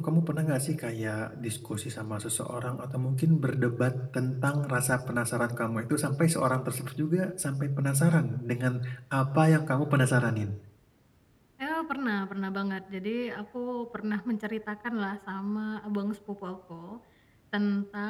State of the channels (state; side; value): identical; both; correlation 1.00